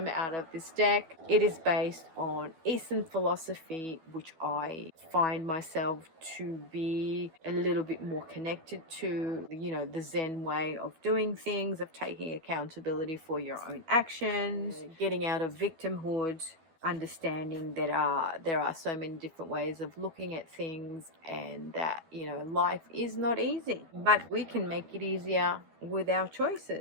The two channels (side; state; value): left; late; 12 ms